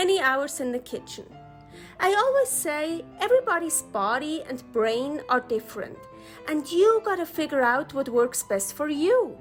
hours in the kitchen. I always say everybody's body and brain are different, and you gotta figure out what works best for you.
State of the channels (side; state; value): both; identical; correlation 1.00